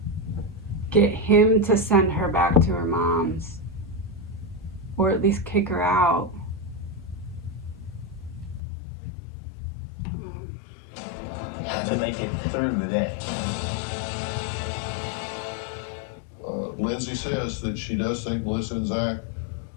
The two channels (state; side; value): drops out; right; at 8.6 s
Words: Get him to send her back to her mom's. Or at least kick her out. To make it through the day. Lindsay says that she does think Melissa and Zach